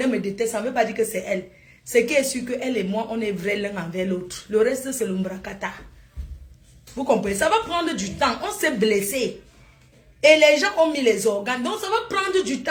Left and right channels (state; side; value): identical; both; correlation 1.00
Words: me détestent, ça ne veut pas dire que c'est elle. Ce qui est sûr que elle et moi, on est vrais l'un envers l'autre. Le reste, c'est l'umbrakata. Vous comprenez? Ça va prendre du temps. On s'est blessé. Et les gens ont mis les organes. Donc, ça va prendre du